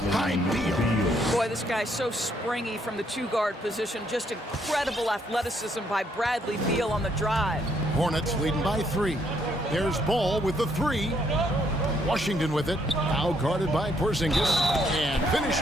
by Beal. Boy, this guy's so springy from the 2-guard position. Just incredible athleticism by Bradley Beal on the drive. Hornets leading by 3. There's Ball with the 3. Washington with it. Now guarded by Porzingis. And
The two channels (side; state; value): both; normal; correlation 0.71